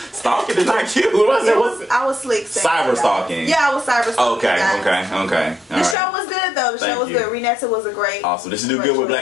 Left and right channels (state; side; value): drops out; right; at 6.0 s